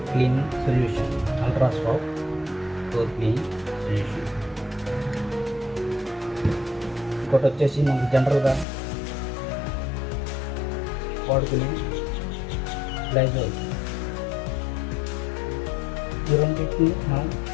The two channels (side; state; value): right; drops out; at 8.7 s